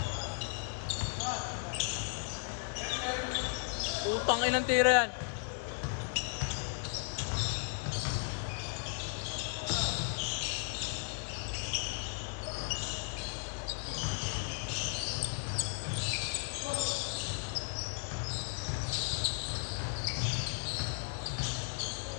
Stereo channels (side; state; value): right; silent; 54 dB below the other